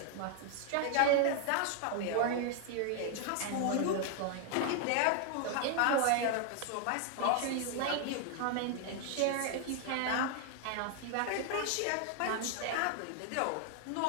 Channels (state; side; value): different; both; correlation 0.00